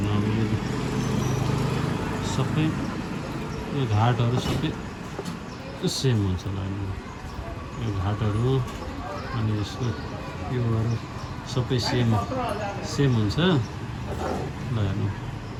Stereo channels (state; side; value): identical; both; correlation 1.00